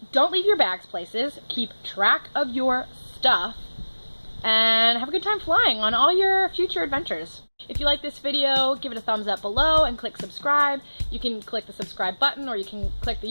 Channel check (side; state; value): both; inverted; correlation -1.00